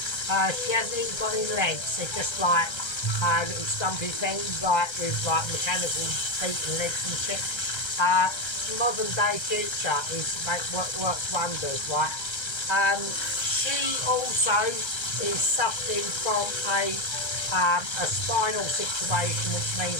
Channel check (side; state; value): right; late; 1.3 ms